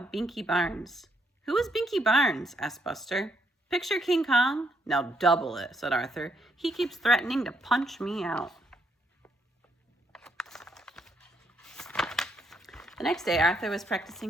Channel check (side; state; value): both; normal; correlation 0.74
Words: Binky Barnes. "Who is Binky Barnes?" asked Buster. "Picture King Kong?" "Now double it," said Arthur. "He keeps threatening to punch me out." The next day, Arthur was